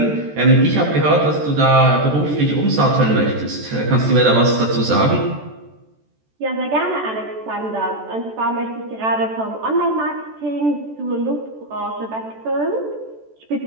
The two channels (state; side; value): late; left; 14 ms